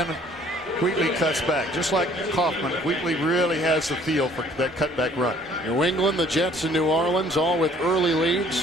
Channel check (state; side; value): normal; both; correlation 0.58